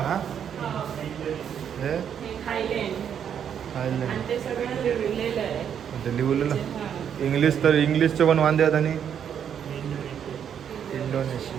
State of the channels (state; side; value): quieter; left; 8.5 dB